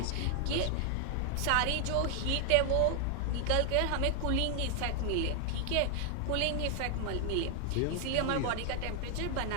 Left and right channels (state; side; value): different; both; correlation 0.00